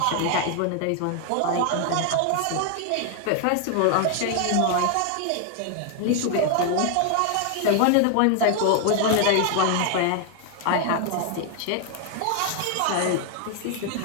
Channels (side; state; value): both; different; correlation 0.00